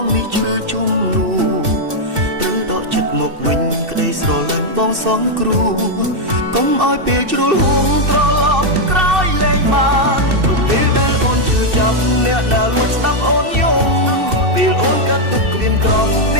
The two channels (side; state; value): left; late; 2.7 ms